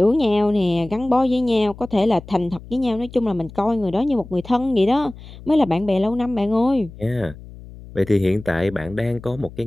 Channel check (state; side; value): noise; left; hum, 17 dB below the sound